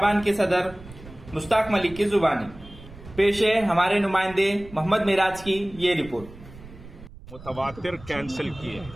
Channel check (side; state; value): right; noise; rumble, 18 dB below the sound